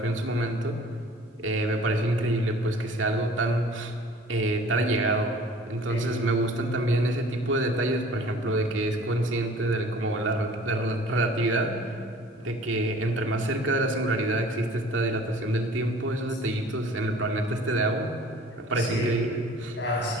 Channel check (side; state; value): both; normal; correlation 0.49